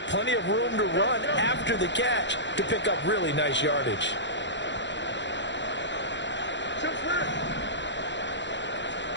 plenty of room to run after the catch to pick up really nice yardage.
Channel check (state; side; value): late; right; 0.52 ms